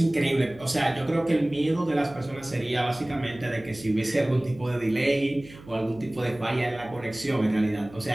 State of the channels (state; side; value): noise; right; hum, 20 dB below the sound